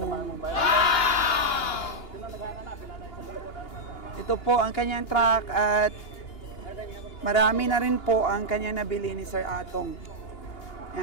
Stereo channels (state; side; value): late; right; 2.8 ms